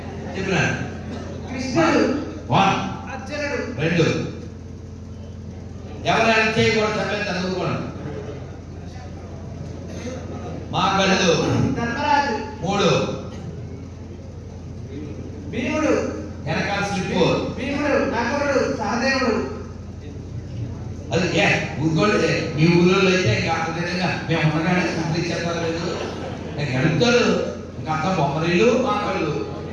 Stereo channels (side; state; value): both; identical; correlation 1.00